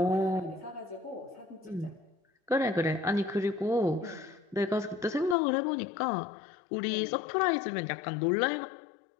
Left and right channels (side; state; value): right; drops out; at 5.4 s